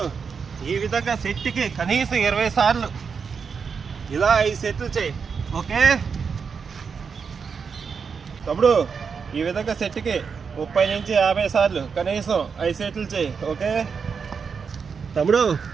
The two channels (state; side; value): quieter; left; 5.9 dB